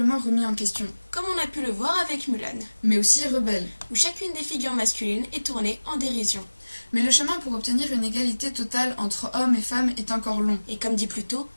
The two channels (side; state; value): both; inverted; correlation -1.00